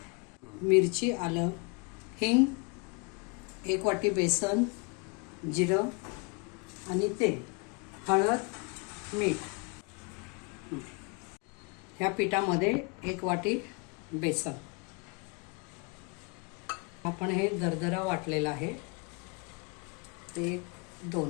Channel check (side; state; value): right; quieter; 31.9 dB